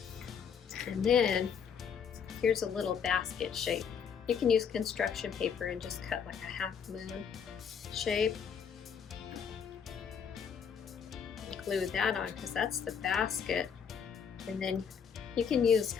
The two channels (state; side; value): quieter; right; 7.0 dB